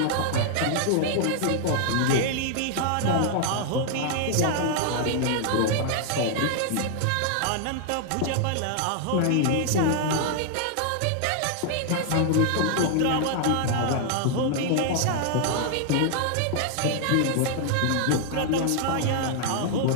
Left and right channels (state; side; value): different; both; correlation 0.00